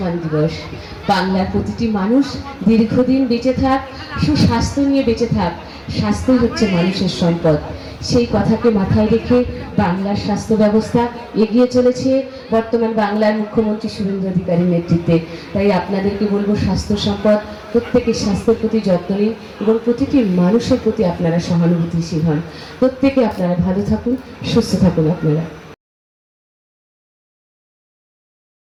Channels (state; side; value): identical; both; correlation 1.00